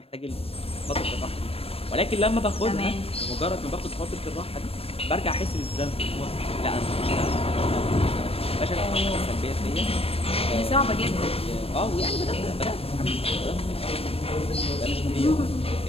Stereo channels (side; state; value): right; late; 0.28 ms